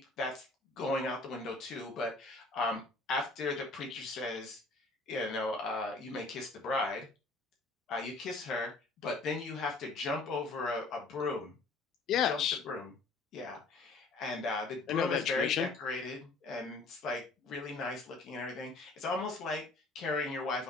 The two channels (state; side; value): quieter; right; 3.6 dB